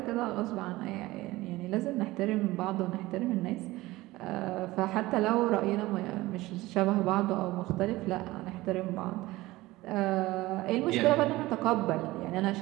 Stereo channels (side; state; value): left; quieter; 18.8 dB